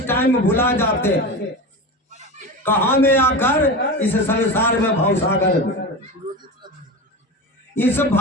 टाइम भुला जाते हैं। कहाँ में आकर इस संसार में भवसागर में, इस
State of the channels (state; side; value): normal; both; correlation 0.25